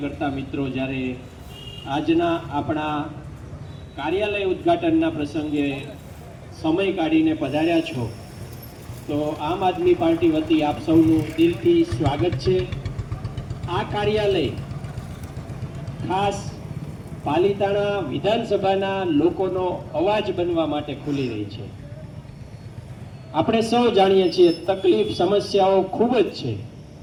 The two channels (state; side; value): identical; both; correlation 1.00